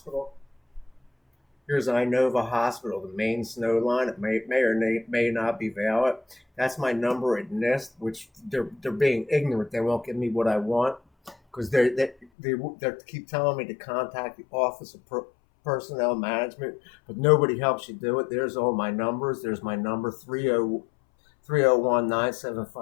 Here's Inova Hospital, the main snow line. It may or may not be valid. That's my number at NIST, which they're being ignorant. They won't give me what I want because they keep telling me to contact the Office of Personnel Management, but nobody helps you do it. There's all my numbers. There's my number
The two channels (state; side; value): drops out; right; at 12.2 s